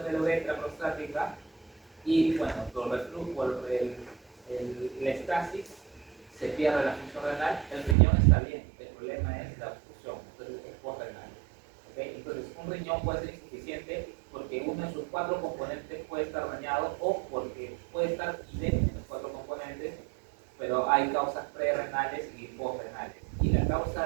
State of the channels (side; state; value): left; drops out; at 8.0 s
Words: de la uretra prostática y, bueno, por la estasis se pierde la función renal, el riñón está bien, el problema es la obstrucción, entonces es posrenal. ¿Okay? Entonces, un riñón puede ser insuficiente porque uno de sus cuatro componentes puede estar dañado o porque puede estar idéntico en los cuatro componentes, pero hay causas prerrenales y postrenales. Y la